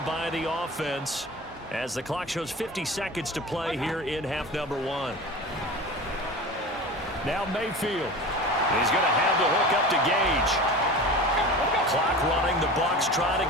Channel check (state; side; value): normal; both; correlation 0.33